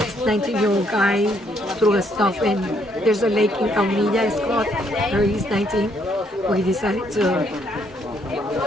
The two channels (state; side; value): normal; both; correlation 0.70